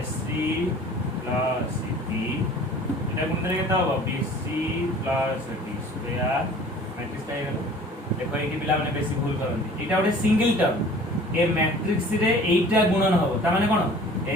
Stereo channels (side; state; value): both; normal; correlation 0.47